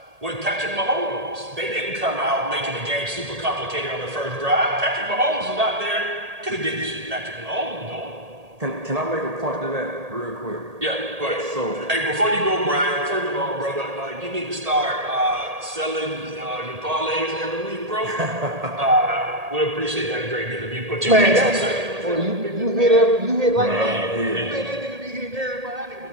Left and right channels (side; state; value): left; late; 1.8 ms